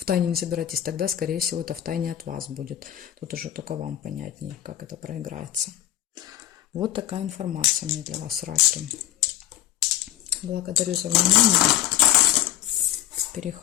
тайне не собираетесь, тогда, скорее всего, это в тайне от вас будет. Тут уже только вам понятнее, как это проиграется. Вот такая информация у меня для вас, раки. Благодарю за внимание.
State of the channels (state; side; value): quieter; right; 12.9 dB